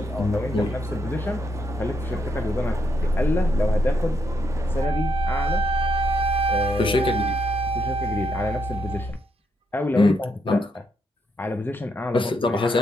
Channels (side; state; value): both; normal; correlation 0.77